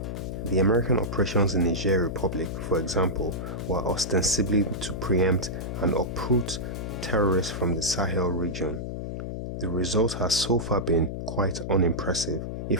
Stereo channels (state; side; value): noise; left; hum, 5 dB below the sound